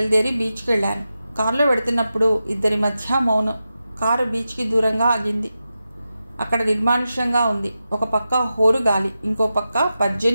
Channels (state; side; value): inverted; both; correlation -0.91